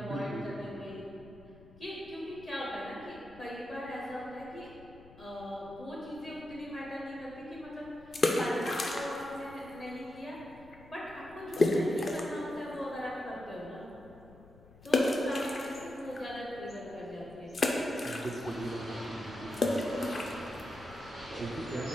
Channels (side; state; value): left; noise; rumble, 22 dB below the sound